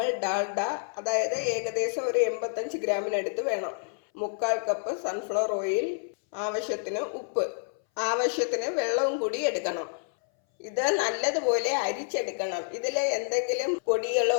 ഡാൽഡ, അതായത് ഏകദേശം ഒരു 85 ഗ്രാമിനടുത്ത് വേണം, 3/4 കപ്പ് സൺഫ്ലവർ ഓയിൽ, ആവശ്യത്തിന് ഉപ്പ്, ആവശ്യത്തിന് വെള്ളവും കൂടി എടുക്കണം. ഇത് നല്ലതുപോലെ അരിച്ചെടുക്കണം. ഇതിൽ എന്തെങ്കിലും പൊടികളോ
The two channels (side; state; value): right; silent; 59 dB below the other